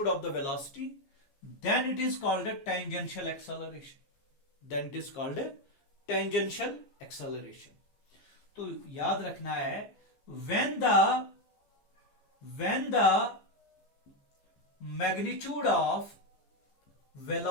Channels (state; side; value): late; right; 14 ms